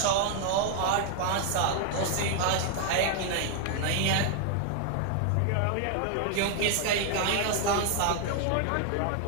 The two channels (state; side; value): different; both; correlation 0.00